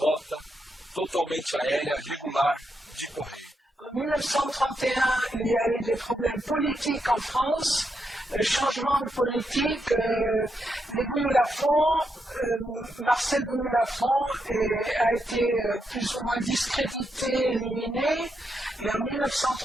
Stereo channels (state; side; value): normal; both; correlation 0.83